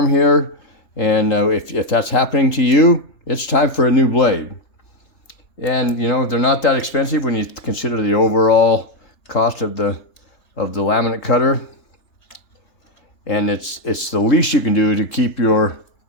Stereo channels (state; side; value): late; right; 3.3 ms